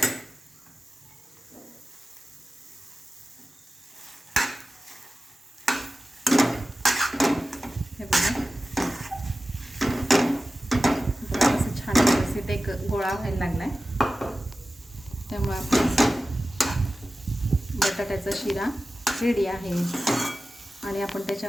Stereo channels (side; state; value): both; normal; correlation 0.95